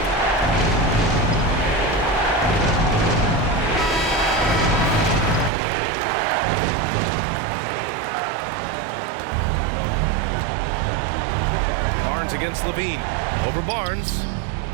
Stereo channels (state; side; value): drops out; left; at 5.5 s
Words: Against Levine. Over Barnes.